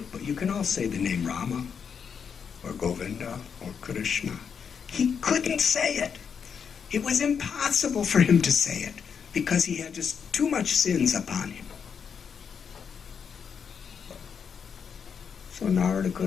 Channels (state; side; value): quieter; right; 6.8 dB